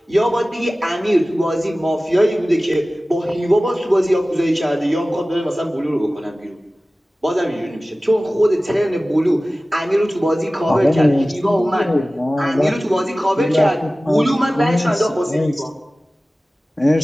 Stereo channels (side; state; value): both; normal; correlation 0.97